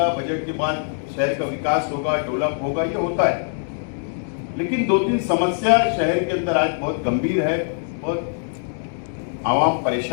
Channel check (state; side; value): silent; right; digital silence